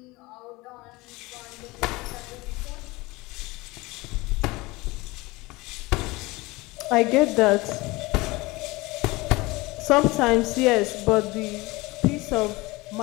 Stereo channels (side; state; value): right; quieter; 22.2 dB